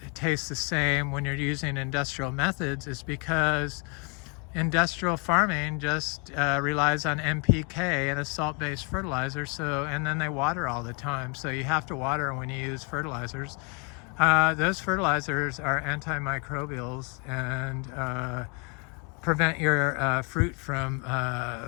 tastes the same when you're using industrial methods is because industrial farming just relies on NPK and a salt-based fertilizer. And then they water all the time. So you have to water when you use fertilizers. Those fertilizers are antimicrobials and prevent your fruit from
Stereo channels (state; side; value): quieter; right; 33.9 dB